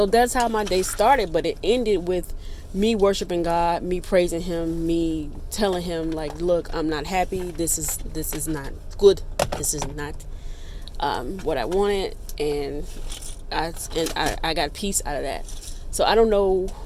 that's how my day started, but it ended with me worshiping God, me praising him, me telling him like, look, I'm not happy. This is not good. This is not what I wanted, and I got peace out of that. So I don't know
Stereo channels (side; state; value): both; identical; correlation 1.00